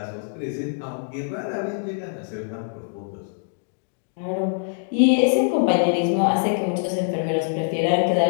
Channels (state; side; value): silent; right; digital silence